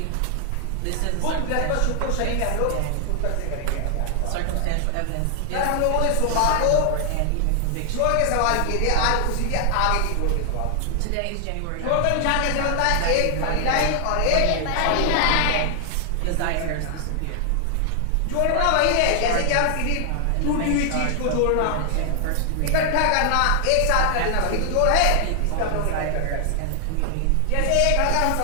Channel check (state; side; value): different; both; correlation 0.00